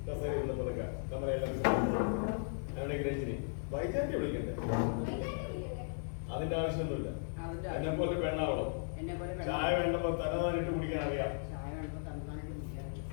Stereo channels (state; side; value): silent; right; digital silence